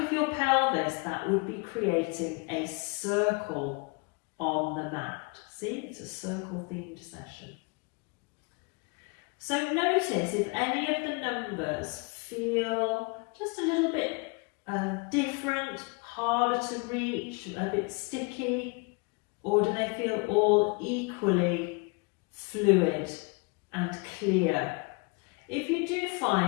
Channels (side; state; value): right; quieter; 31.0 dB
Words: your pelvis, that would be creating a circle on the mat. See, it's a circle themed session. So notice if any of the numbers feel just a little bit different, harder to reach, a bit sticky, or do they feel all equally fluid and clear? If you do